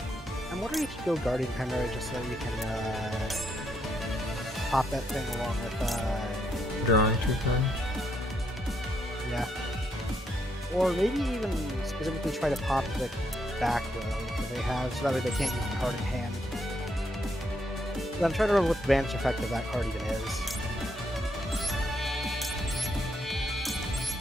I'm wondering if you go Guardian Chimera just so you can pop that thing along with Drawing 2 cards. yeah. Or maybe even specifically try to pop the back row that they have, so that way they can't use the card in hand. But I'm trying to remember what the banish effect of that card even is.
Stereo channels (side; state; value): both; normal; correlation 0.76